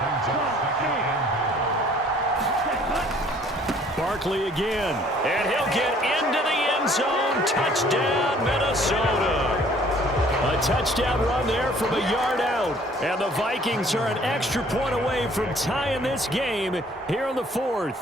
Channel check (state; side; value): normal; both; correlation 0.57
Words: Barkley again. And he'll get into the end zone. Touchdown, Minnesota. A touchdown run there from a yard out. And the Vikings are an extra point away from tying this game here in the 4th.